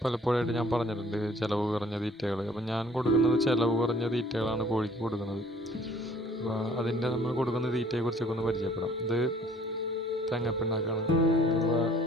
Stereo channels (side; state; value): both; normal; correlation 0.55